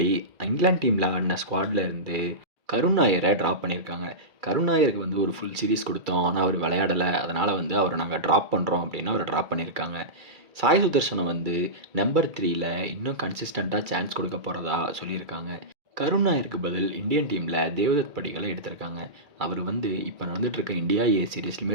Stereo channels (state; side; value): late; left; 2.3 ms